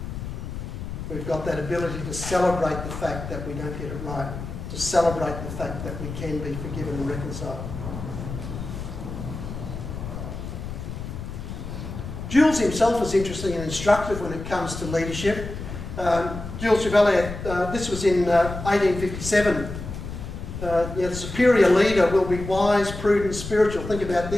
We've got that ability to celebrate the fact that we don't get it right, to celebrate the fact that we can be forgiven and reconciled. Jules himself is interesting and instructive when it comes to leadership. Jules Chevalier, this was in 1857. The superior leader will be wise, prudent, spiritual. Think about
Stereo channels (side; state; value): left; noise; rumble, 8 dB below the sound